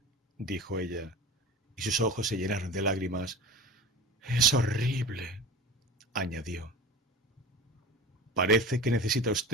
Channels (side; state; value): both; normal; correlation 0.34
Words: dijo ella. y sus ojos se llenaron de lágrimas. Es horrible, añadió. Parece que necesita